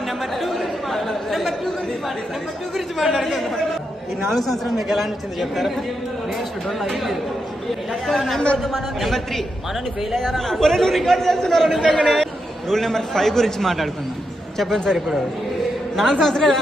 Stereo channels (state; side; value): normal; both; correlation 0.84